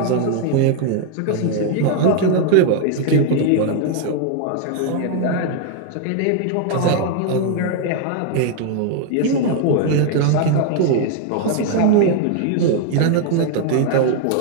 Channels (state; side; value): different; both; correlation 0.00